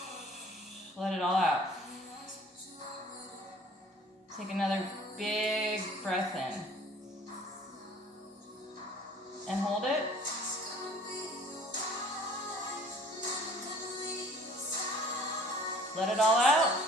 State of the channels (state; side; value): normal; both; correlation 0.52